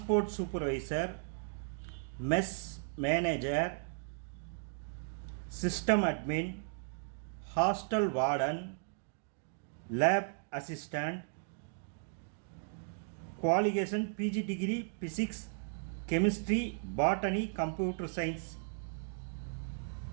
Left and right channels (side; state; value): left; silent; digital silence